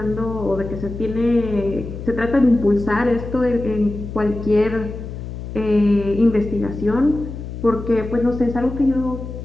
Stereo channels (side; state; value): left; noise; hum, 9 dB below the sound